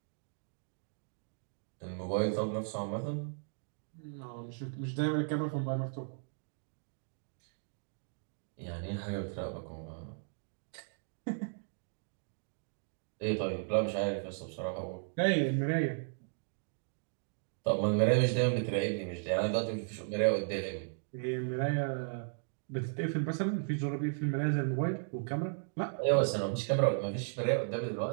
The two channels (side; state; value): left; silent; digital silence